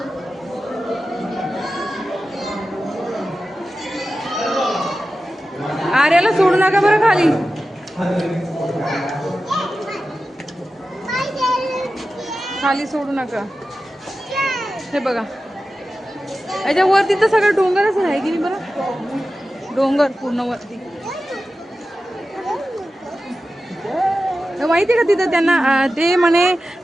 आर्याला सोडू नका बरं खाली खाली सोडू नका हे बघा याच्या वरती तर सगळं डोंगरच आहे की नाही बरं डोंगर पूर्ण वरती माहिती आहे का तिथं त्यांना ते म्हणे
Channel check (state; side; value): normal; both; correlation 0.93